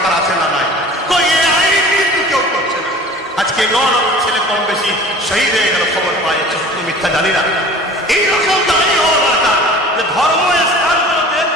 আছে না? নাই? এই আইন কিন্তু কেউ করছে না। আজকে 9 ছেলে কম বেশি শহীদ হয়ে গেল, খবর পাওয়া যাচ্ছে, সত্য মিথ্যা জানি না। এইরকম দাঁড়ি হওয়া দরকার যে ধর্ম স্থানগুলোতে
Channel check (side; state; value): both; normal; correlation 0.43